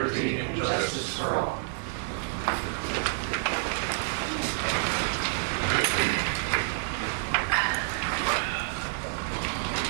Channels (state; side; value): silent; left; digital silence